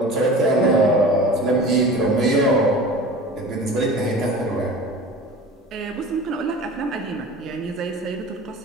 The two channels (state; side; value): normal; both; correlation 0.38